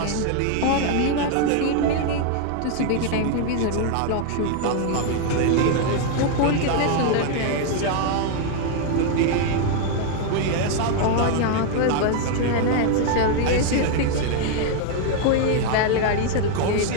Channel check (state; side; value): different; both; correlation 0.00